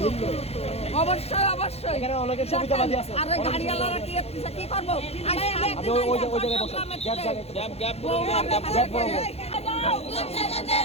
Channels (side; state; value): right; late; 0.30 ms